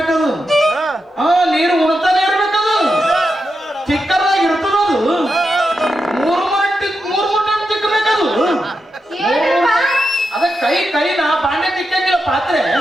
ನೀರು ಉಣ್ತಾನೆ ಇರ್ಬೇಕದು, ಚಿಕ್ಕದಾಗಿ ಇರ್ತದದು. 3 ಟೈಮ್ ತಿಕ್ಕಬೇಕದು. ಅದ ಕೈ ಕೈನ ಬಾಂಡೆ ತಿಕ್ಕಂಗಿಲ್ಲ, ಪಾತ್ರೆ.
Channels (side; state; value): both; normal; correlation 0.87